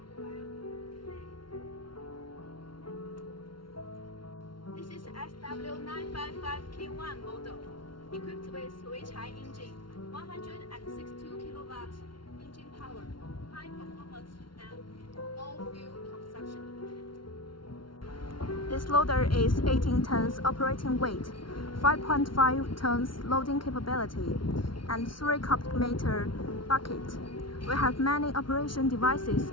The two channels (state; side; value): late; right; 0.73 ms